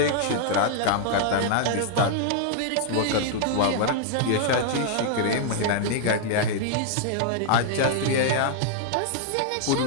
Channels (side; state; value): both; different; correlation -0.01